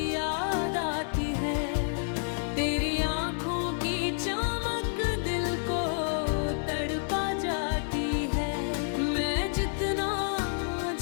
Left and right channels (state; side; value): silent; right; 58 dB below the other